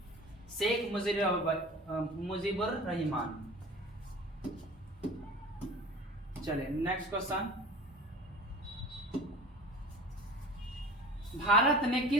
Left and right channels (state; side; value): normal; both; correlation 0.39